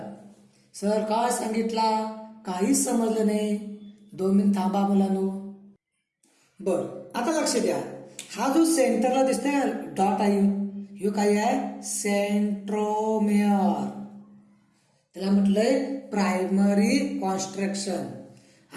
Sir काय सांगितला, काहीच समजलं नाही. 2 मिनिट थांबा मुलांनो. बर, आता लक्ष द्या. हा जो सेंटरला दिसतोय डॉट आहे, ह्यो काय आहे, सेंट्रोमेअर. त्याला म्हटलंय प्रायमरी कॉन्स्ट्रक्शन.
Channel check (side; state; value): both; identical; correlation 1.00